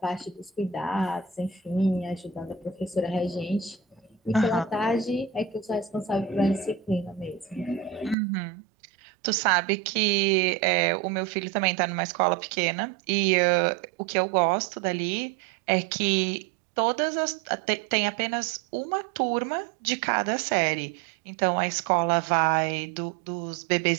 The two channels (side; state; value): left; drops out; at 8.2 s